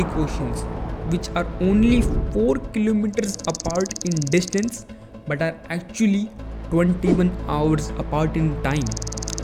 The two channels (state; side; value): identical; both; correlation 1.00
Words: Oceans which are only 4 kilometers apart in distance but are actually 21 hours apart in time,